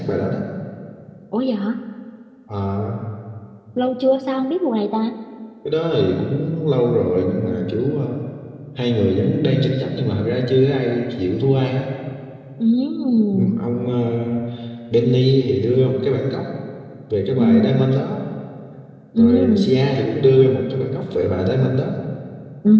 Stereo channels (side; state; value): both; identical; correlation 1.00